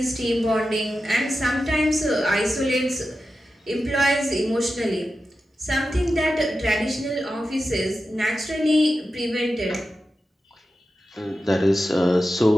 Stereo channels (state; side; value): normal; both; correlation 0.91